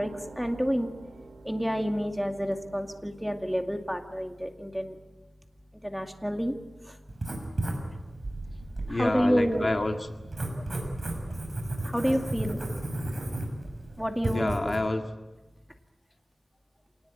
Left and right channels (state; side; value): normal; both; correlation 0.98